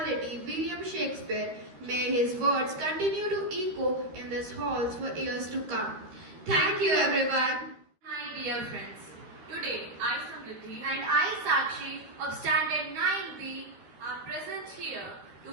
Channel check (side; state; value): left; late; 13 ms